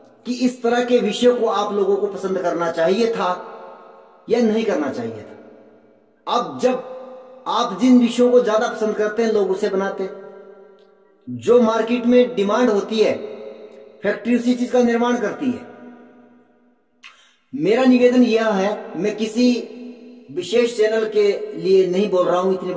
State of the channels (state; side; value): identical; both; correlation 1.00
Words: कि इस तरह के विषयों को आप लोगों को पसंद करना चाहिए था या नहीं करना चाहिए था। अब जब आप जिन विषयों को ज्यादा पसंद करते हैं, लोग उसे बनाते हैं। जो मार्केट में डिमांड होती है, फैक्ट्री उसी चीज का निर्माण करती है। मेरा निवेदन यह है, मैं किसी विशेष चैनल के लिए नहीं बोल रहा हूं, इतनी